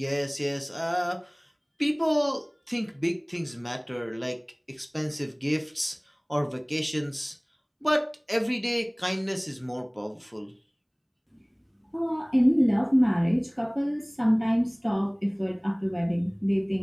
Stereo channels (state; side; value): identical; both; correlation 1.00